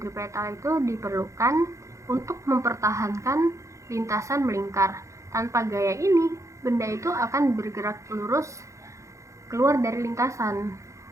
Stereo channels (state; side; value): late; left; 0.15 ms